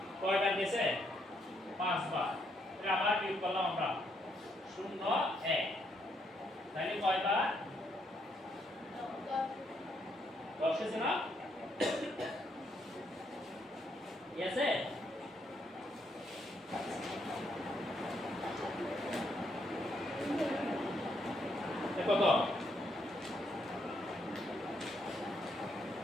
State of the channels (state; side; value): normal; both; correlation 0.75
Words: কয়বার গেছে? 5 বার। তাহলে আবার বিয়োগ করলাম আমরা 0 1। তাহলে কয়বার? 10 হয়েছে না? ঠিক আছে, কত?